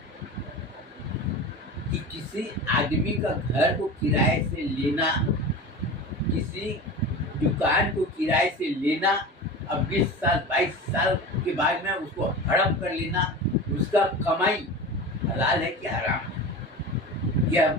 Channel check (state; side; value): normal; both; correlation 0.31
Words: कि किसी आदमी का घर को किराए से लेना, किसी दुकान को किराए से लेना, अब 20 साल 22 साल के बाद में उसको हड़प कर लेना, उसका कमाई हलाल है कि हराम है, यह